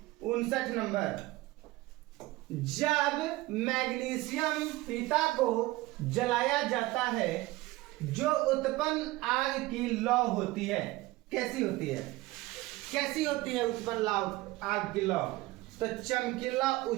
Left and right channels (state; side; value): quieter; left; 19.4 dB